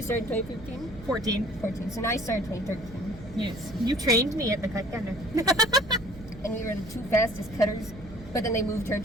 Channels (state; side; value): noise; right; hum, 17 dB below the sound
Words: started 2015? 14. So now I started 2013. Yes. You trained me at the cut gunner. And we were the two fastest cutters, but then they moved her